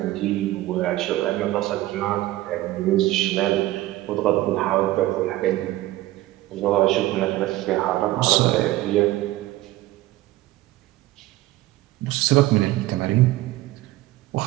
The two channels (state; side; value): quieter; left; 16.7 dB